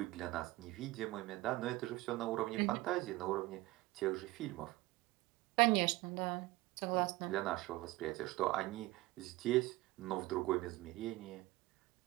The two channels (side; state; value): left; quieter; 19.5 dB